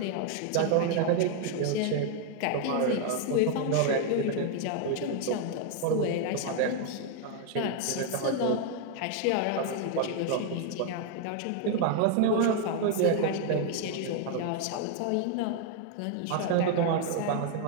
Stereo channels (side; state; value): both; different; correlation 0.00